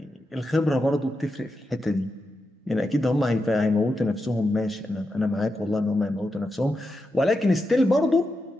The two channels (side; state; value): both; normal; correlation 0.87